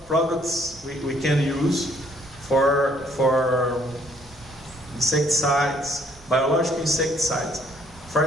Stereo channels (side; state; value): both; normal; correlation 0.64